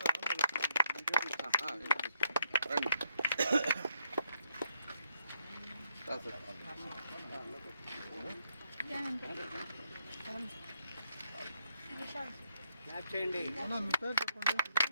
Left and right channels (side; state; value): both; inverted; correlation -0.73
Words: రండి. చేయండి. మీ పేరు చెప్పండి.